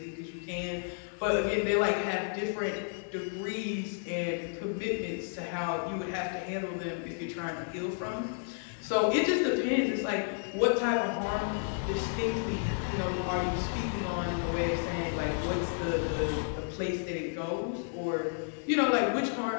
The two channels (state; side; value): silent; right; digital silence